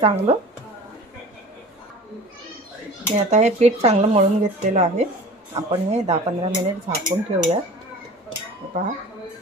मी आता हे पीठ चांगलं मळून घेतलेलं आहे। आपण हे 10-15 मिनिट झाकून ठेवूया। पहा,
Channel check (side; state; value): both; normal; correlation 0.40